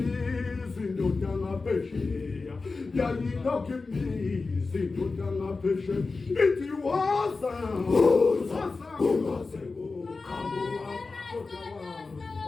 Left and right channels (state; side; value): quieter; right; 4.0 dB